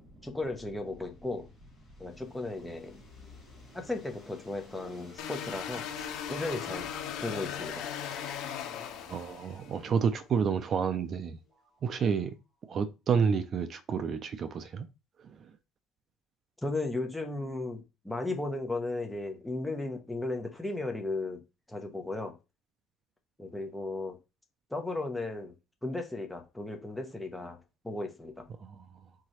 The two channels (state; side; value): normal; both; correlation 0.72